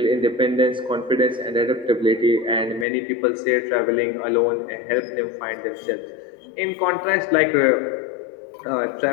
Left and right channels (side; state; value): right; drops out; at 2.9 s